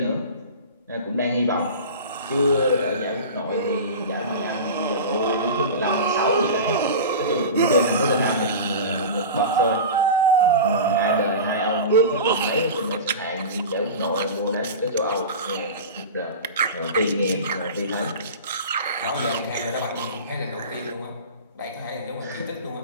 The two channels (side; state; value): both; inverted; correlation -0.31